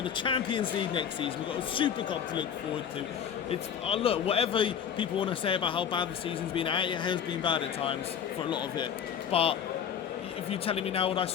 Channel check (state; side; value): quieter; right; 8.3 dB